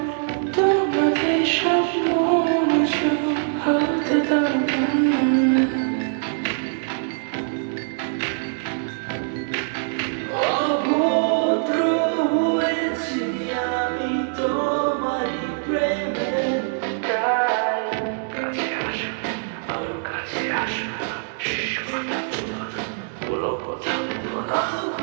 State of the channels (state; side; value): silent; left; 63 dB below the other